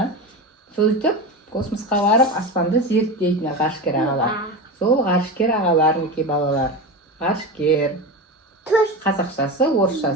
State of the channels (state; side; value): normal; both; correlation 0.23